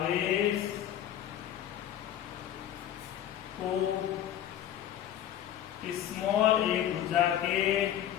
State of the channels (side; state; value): right; quieter; 11.1 dB